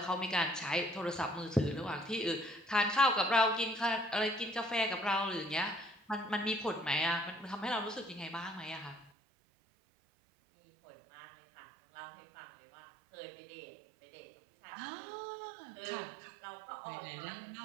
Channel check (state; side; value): drops out; left; at 9.1 s